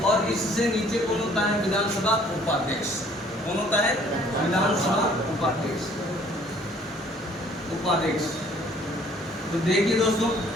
और इससे नीचे कौन होता है? विधानसभा उपाध्यक्ष। कौन होता है? विधानसभा उपाध्यक्ष। उपाध्यक्ष। तो देखिए दोस्तों,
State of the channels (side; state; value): both; normal; correlation 0.57